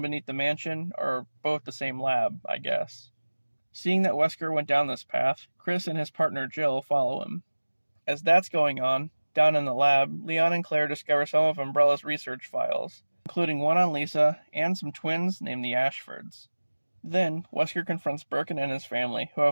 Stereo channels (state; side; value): inverted; both; correlation -1.00